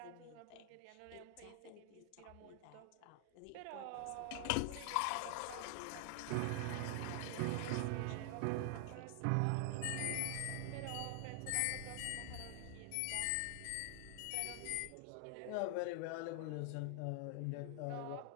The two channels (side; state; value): both; different; correlation 0.00